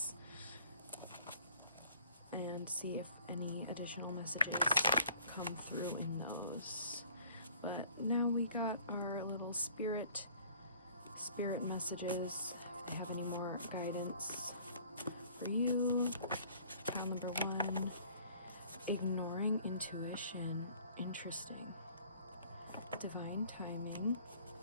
and see if any additional messages come through in those. But now we got our little spirit messages. If they have any more guidance for you. Pile number 1, ignoring intuition. Interesting. Divine timing.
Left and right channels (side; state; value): both; inverted; correlation -0.54